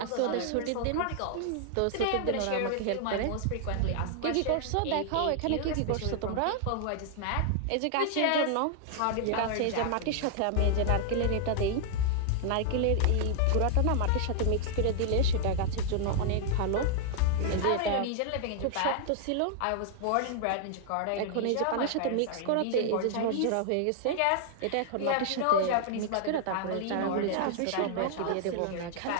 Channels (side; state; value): both; different; correlation -0.01